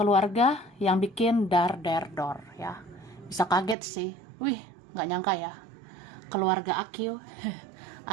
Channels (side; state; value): left; drops out; at 3.8 s